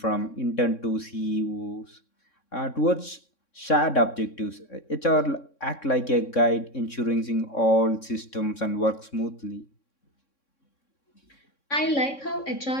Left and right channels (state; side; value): late; right; 3.6 ms